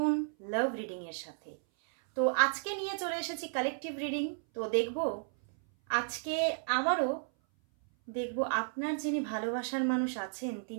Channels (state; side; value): silent; left; 56 dB below the other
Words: লাভ রিডিং এর সাথে। তো আজকে নিয়ে চলে এসেছি কালেকটিভ রিডিং। তো দেখব আজকে আবারও দেখব আপনার যিনি ভালোবাসার মানুষ আছেন